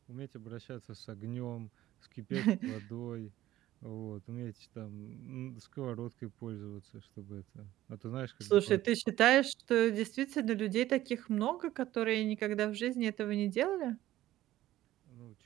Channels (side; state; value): left; quieter; 14.7 dB